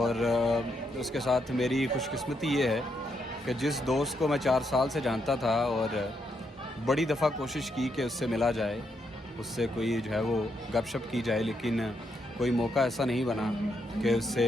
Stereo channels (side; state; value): both; normal; correlation 0.79